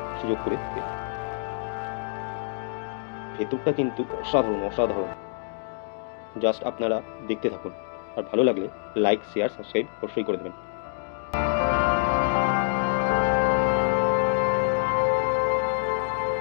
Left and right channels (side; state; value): right; silent; digital silence